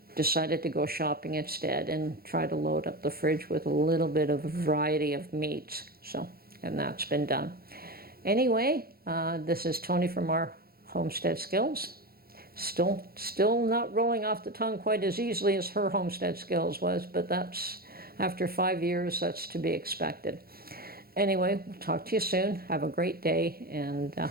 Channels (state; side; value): late; left; 0.44 ms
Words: Decided to go shopping instead and try to load up the fridge with a little bit of a variety of meats. So, and that's been done. Anyway, this is Tony from our Homestead Skills. Still not rolling off the tongue quite as easily as her Homestead Skills was, but that's, after 5 years, that's to be expected. Anyway, we'll talk to you soon. Have a great day, and